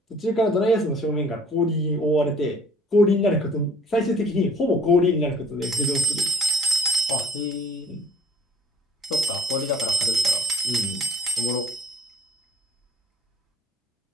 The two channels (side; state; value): both; normal; correlation 0.52